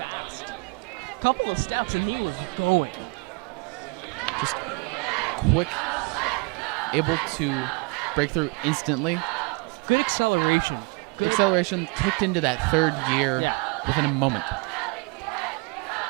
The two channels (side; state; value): left; quieter; 31.5 dB